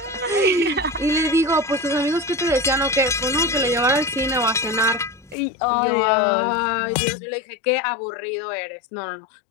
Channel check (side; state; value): right; drops out; at 5.4 s